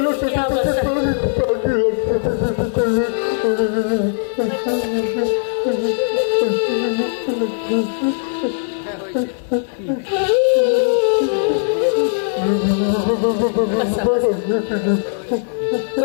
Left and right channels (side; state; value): right; silent; 67 dB below the other